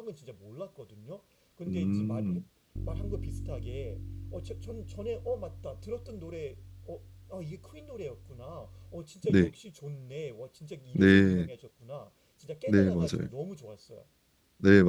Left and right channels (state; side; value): identical; both; correlation 1.00